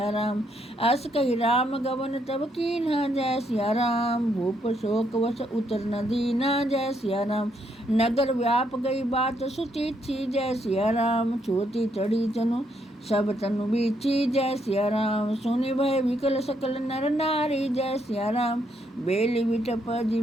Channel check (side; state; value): both; normal; correlation 0.75